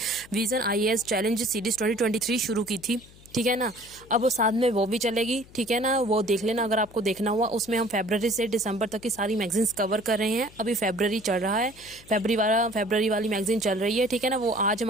विजन आईएएस चैलेंज सीरीज 2023 शुरू की थी। ठीक है ना। अब वो साथ में वो भी चलेगी। ठीक है ना, वो देख लेना अगर आपको देखना हुआ। उसमें हम फरवरी से दिसंबर तक की सारी मैगजीन्स कवर कर रहे हैं। अभी फरवरी चल रहा है, फरवरी वाली मैगजीन चल रही है। ठीक है ना। वो आज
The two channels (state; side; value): noise; left; hum, 23 dB below the sound